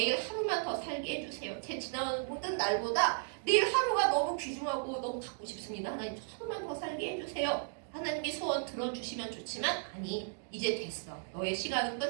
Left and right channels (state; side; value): silent; left; digital silence